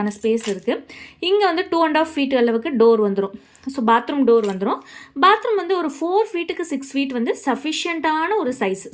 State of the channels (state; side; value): identical; both; correlation 1.00